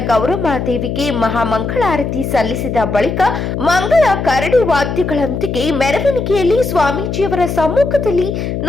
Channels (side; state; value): left; noise; hum, 3 dB below the sound